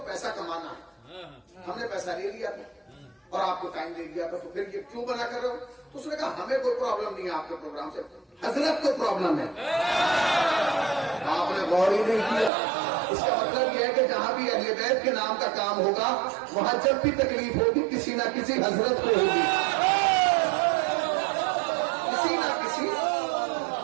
پیسہ کمانا ہے، ہم نے پیسہ لے لیا تھا اور آپ کو ٹائم دے دیا تھا، تو پھر یہ کیوں بنا کر رہے ہو؟ تو اس نے کہا ہمیں کوئی پرابلم نہیں ہے آپ کے پروگرام سے، حضرت کو پرابلم ہے. آپ نے غور ہی نہیں کیا. اس کا مطلب یہ ہے کہ جہاں بھی اہل بیت کے نام کا کام ہوگا وہاں جب بھی تکلیف ہوگی کسی نہ کسی حضرت کو ہوگی، کسی نہ کسی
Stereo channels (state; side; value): drops out; left; at 12.5 s